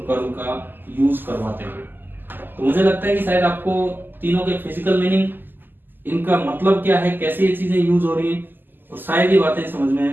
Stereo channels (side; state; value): left; late; 0.092 ms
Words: कर्ल का यूज करवाते हुए। तो मुझे लगता है कि शायद आपको तीनों के फिजिकल मीनिंग, इनका मतलब क्या है, कैसे ये चीजें यूज हो रही है, और शायद ये बातें समझ